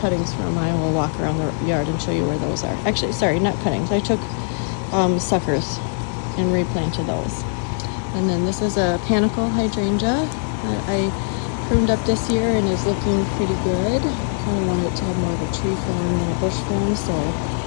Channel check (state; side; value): silent; right; digital silence